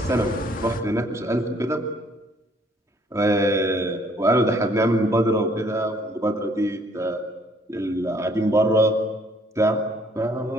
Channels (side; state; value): both; normal; correlation 0.62